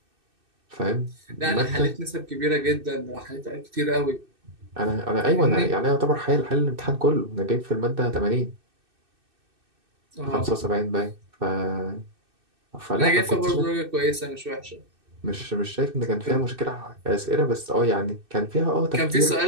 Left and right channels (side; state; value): left; late; 2.6 ms